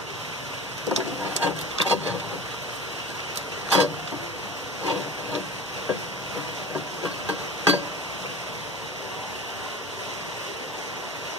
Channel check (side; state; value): both; normal; correlation 0.35